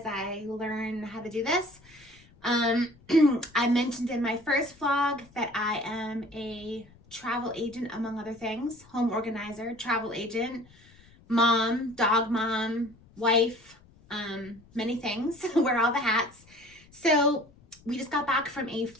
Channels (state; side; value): noise; left; rumble, 27 dB below the sound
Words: I learn how to do this. I mentioned in my first vlog that I am a travel agent, among other things, home organizer, travel agent, mom, dog mom, wife, many things, wear all the hats. So we just got back from a